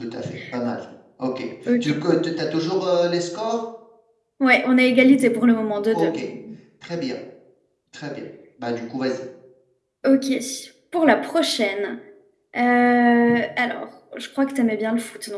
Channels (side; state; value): both; identical; correlation 1.00